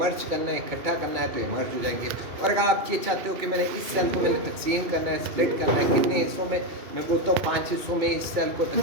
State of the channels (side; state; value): left; late; 2.7 ms